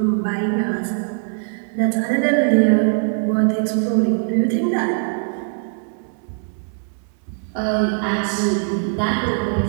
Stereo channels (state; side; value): silent; left; digital silence